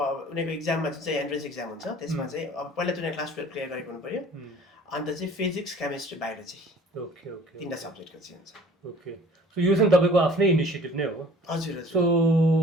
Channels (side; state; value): both; normal; correlation 0.49